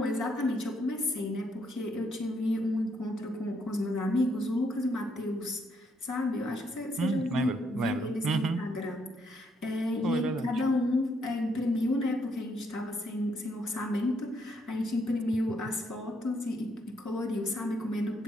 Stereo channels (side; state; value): both; normal; correlation 0.74